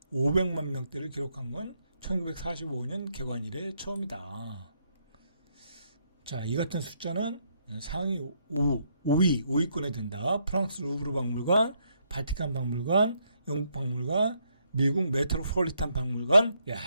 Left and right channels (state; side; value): inverted; both; correlation -0.74